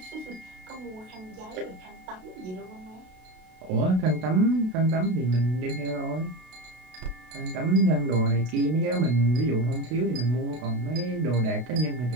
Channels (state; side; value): late; left; 32 ms